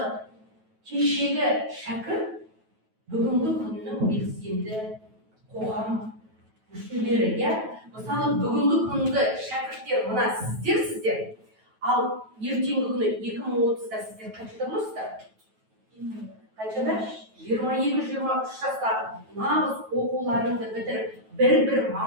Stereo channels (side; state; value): left; late; 9.2 ms